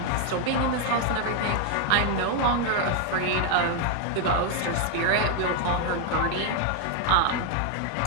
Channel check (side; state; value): both; different; correlation 0.00